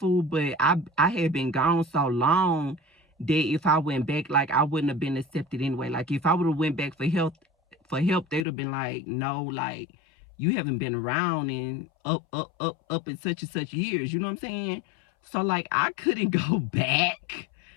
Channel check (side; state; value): right; drops out; at 8.5 s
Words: but I had been gone so long that if I went back, like, I wouldn't have been accepted anyway. Like, if I would have went back for help, they would have been like, no, like, you haven't been around in up in such and such years. You know what I'm saying? So, like, I couldn't go back.